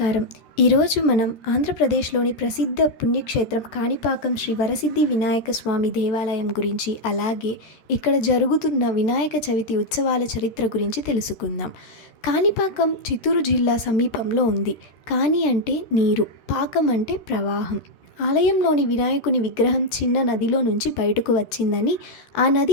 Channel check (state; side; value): late; right; 13 ms